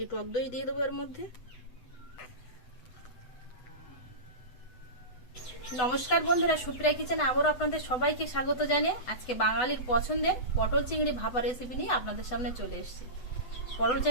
টক দই দিয়ে দেবো এর মধ্যে। নমস্কার বন্ধুরা, সুপ্রিয়া কিচেনে আবারও আপনাদের সবাইকে স্বাগত জানিয়ে আজকে বাঙালির পছন্দের পটল চিংড়ি ভাপা রেসিপি নিয়ে আপনাদের সামনে চলে এসেছি। পটল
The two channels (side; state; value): right; late; 8.0 ms